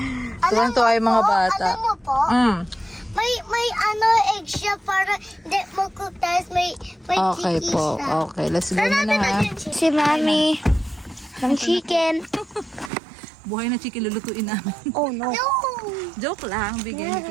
Tuwang-tuwa yung mga bata. Alam mo po, may ano egg siya para hindi magkutas. May Okay chicken po. siya. Okay, let's go na ha. Si Mami. Ng chicken. Buhay na chicken lulutuin namin. Oh no. Joke lang. Bigyan ni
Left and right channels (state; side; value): drops out; left; at 12.9 s